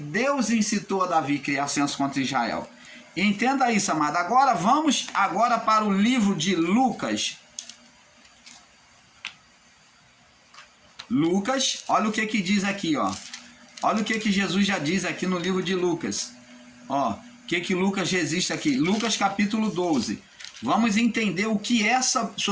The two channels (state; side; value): identical; both; correlation 1.00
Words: incitou a Davi a criar censo contra Israel. Entenda isso, amado. Agora vamos para o livro de Lucas. Lucas, olha o que diz aqui, ó. Olha o que Jesus já diz aqui no livro de Lucas. Ó, o que Lucas resiste aqui? Lucas capítulo 12. Vamos entender o que é essa